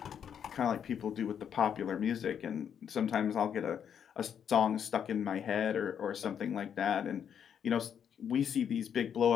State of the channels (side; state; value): right; quieter; 8.3 dB